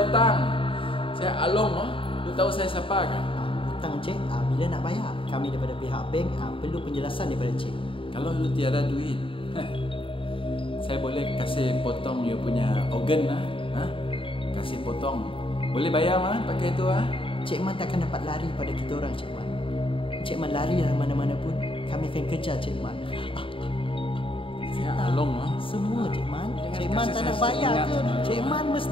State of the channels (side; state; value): right; late; 0.25 ms